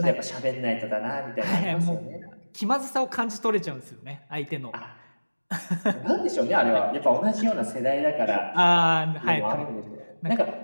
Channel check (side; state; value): both; inverted; correlation -1.00